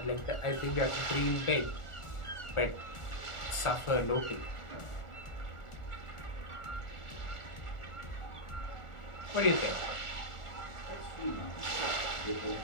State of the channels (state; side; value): late; right; 1.4 ms